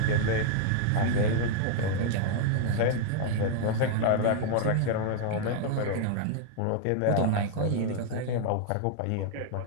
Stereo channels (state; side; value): different; both; correlation -0.01